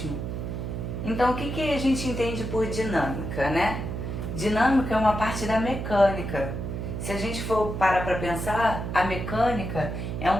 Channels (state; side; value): noise; right; hum, 4 dB below the sound